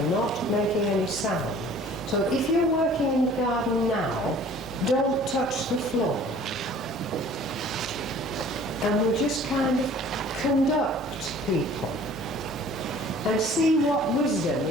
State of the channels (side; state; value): right; noise; hum, 23 dB below the sound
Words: not making any sound. So if you're working in the garden now, don't touch the floor. And we'll just kind of conduct people and see what wisdom